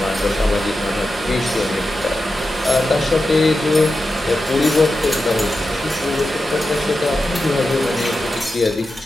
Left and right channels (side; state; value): both; normal; correlation 0.90